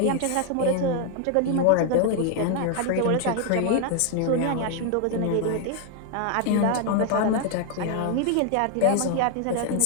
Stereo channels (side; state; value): both; different; correlation 0.00